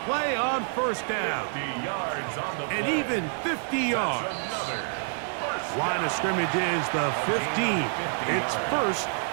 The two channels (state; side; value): silent; left; 60 dB below the other